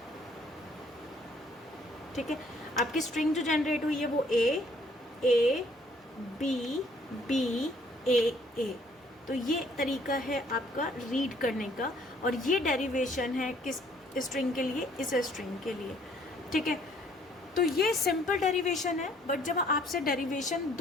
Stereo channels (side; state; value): both; normal; correlation 0.62